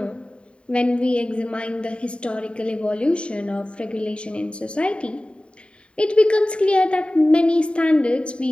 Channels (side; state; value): right; late; 0.056 ms